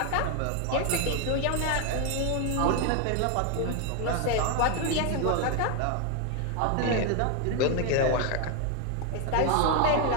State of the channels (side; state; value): both; different; correlation 0.01